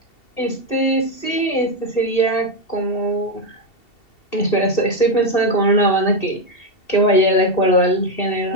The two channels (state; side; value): late; right; 2.7 ms